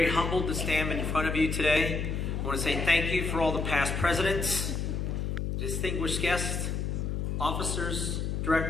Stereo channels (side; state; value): left; noise; hum, 1 dB below the sound